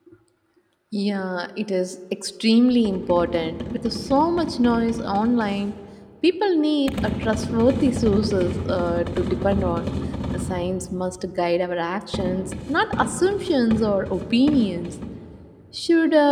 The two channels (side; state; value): both; identical; correlation 1.00